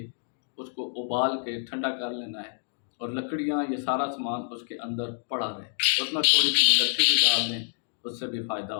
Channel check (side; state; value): right; silent; digital silence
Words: اس کو ابال کے ٹھنڈا کر لینا ہے، اور لکڑیاں یہ سارا سامان اس کے اندر پڑا رہے، اس میں تھوڑی سی ملٹھی بھی ڈال دیں، اس سے بھی فائدہ